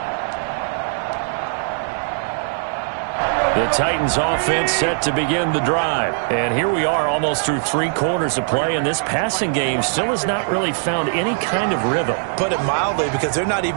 The Titans offense set to begin the drive. And here we are almost through 3 quarters of play, and this passing game still has not really found any kind of rhythm. Put it mildly, because they're not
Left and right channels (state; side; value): silent; left; 65 dB below the other